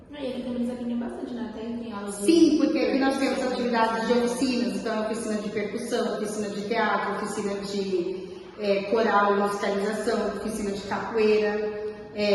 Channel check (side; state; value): both; identical; correlation 1.00